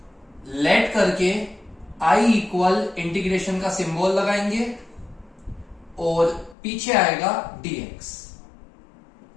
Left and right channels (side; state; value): right; drops out; at 6.6 s